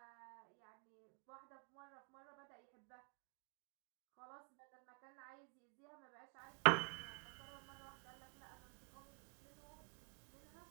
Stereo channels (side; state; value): left; quieter; 38.8 dB